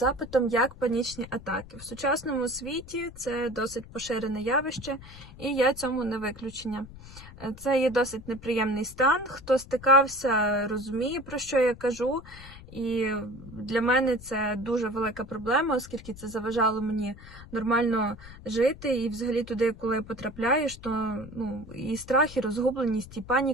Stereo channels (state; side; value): noise; left; rumble, 17 dB below the sound